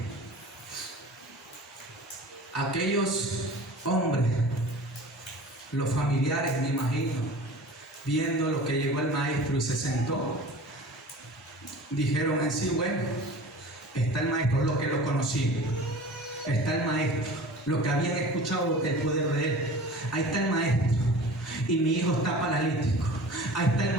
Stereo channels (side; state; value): both; normal; correlation 0.40